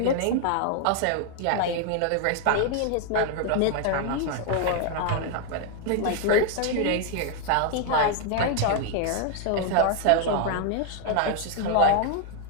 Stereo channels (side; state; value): both; different; correlation 0.00